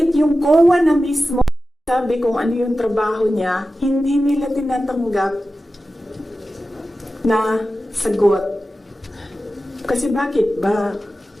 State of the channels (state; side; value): normal; both; correlation 0.94